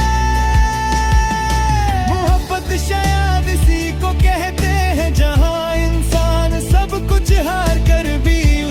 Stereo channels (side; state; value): both; identical; correlation 1.00